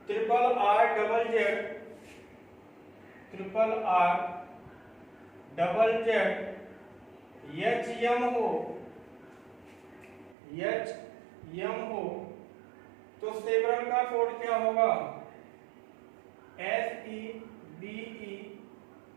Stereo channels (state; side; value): drops out; left; at 10.4 s